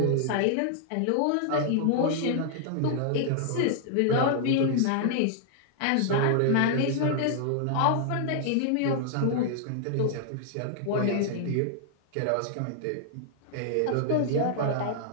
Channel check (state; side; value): different; both; correlation -0.01